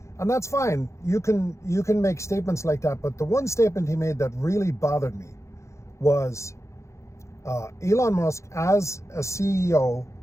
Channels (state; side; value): late; right; 0.14 ms